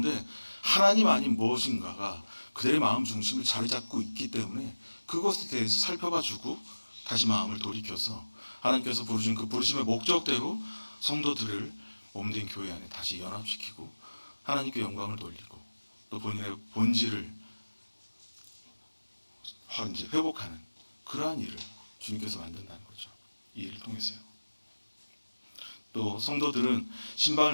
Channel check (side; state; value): both; inverted; correlation -1.00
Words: 하나님 아닌 무엇인가가 그들의 마음 중심을 자리 잡고 있기 때문에 그것에 대해서 살펴봐주고 다시 마음을 돌이켜서 하나님께서 부르신 그 부르심의 목적대로 성도들을 몸된 교회 안에 다시 연합시키고 하나님께 영광을 돌리고 또 본인의 본질을 이제 회복하는 그러한 일을 주님께서 만든다는 거죠. 이 일을 통해서요. 또 성도들은